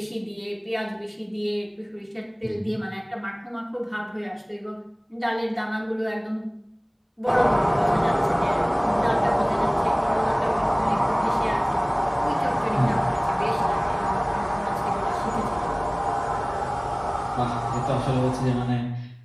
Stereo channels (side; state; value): both; identical; correlation 1.00